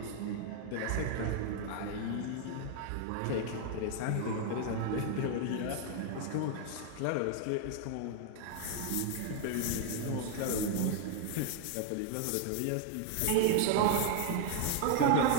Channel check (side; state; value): both; different; correlation 0.00